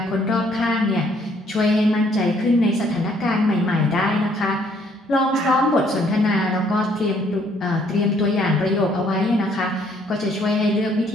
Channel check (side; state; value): both; normal; correlation 0.65